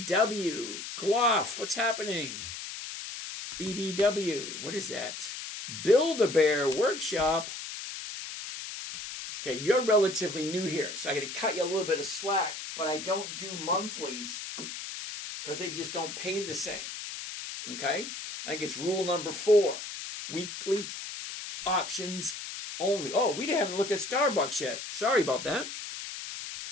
Gloff. What's happening? BBW. What is that? Build-A-Bear Workshop. Okay, you're relatively new here, so I got to cut you a little bit of slack, but I don't do monthlies because they just don't pay the same. Okay? I think it's rule number 4. Weekly options only. Oh, we haven't looked at Starbucks yet. Sorry about that.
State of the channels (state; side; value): noise; left; hiss, 8 dB below the sound